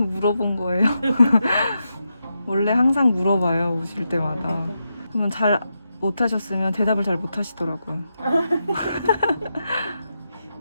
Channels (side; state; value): both; inverted; correlation -0.86